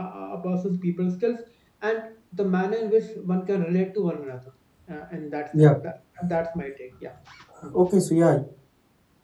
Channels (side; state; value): both; identical; correlation 1.00